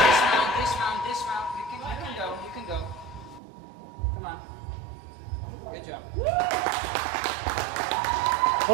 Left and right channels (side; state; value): left; drops out; at 3.4 s